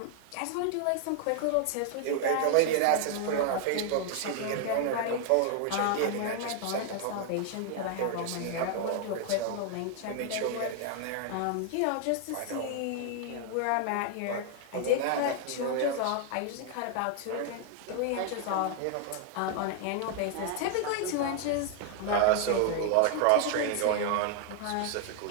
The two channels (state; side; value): different; both; correlation 0.00